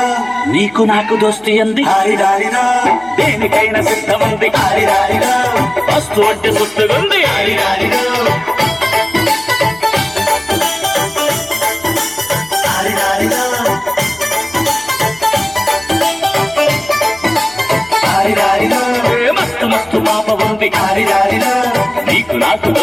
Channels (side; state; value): left; noise; hum, 27 dB below the sound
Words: నీకు నాకు దోస్తి అంది, దేనికైనా సిద్ధముంది, వస్తు అంటే సుస్తుగుంది. మస్తు మస్తు పాప ఉంది, నీకు నాకు